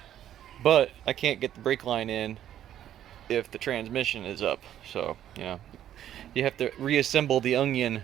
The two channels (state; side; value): quieter; left; 11.3 dB